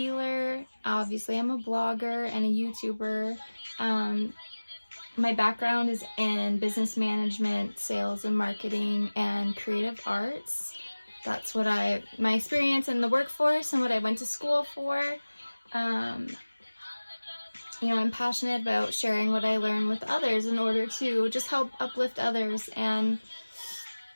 obviously I'm a blogger and a YouTuber. My background is in business management, sales and marketing, and creative arts. That's what my experience in the workforce and what I went to school for. I'm passionate about sharing what I learn with others in order to just help uplift others. And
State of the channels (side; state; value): both; inverted; correlation -1.00